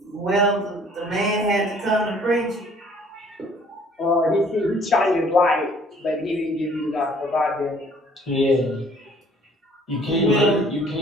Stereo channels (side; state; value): both; normal; correlation 0.57